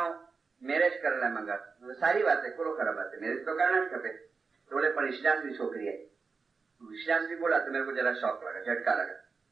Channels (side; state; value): left; quieter; 4.8 dB